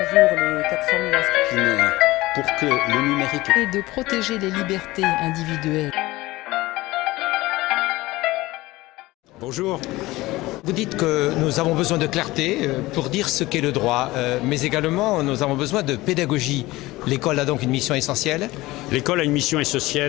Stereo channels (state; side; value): quieter; right; 19.2 dB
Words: jours, les 400 000 inscrits. Pour que le numérique... Et de protéger les libertés individuelles. Bonjour. Vous dites que nous avons besoin de clarté pour dire ce qu'est le droit, mais également nous avons besoin de pédagogie. L'école a donc une mission essentielle. L'école a une mission